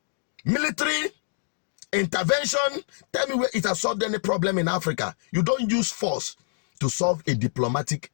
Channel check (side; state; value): right; silent; digital silence